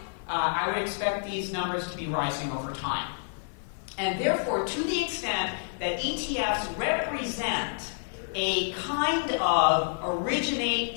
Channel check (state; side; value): silent; right; digital silence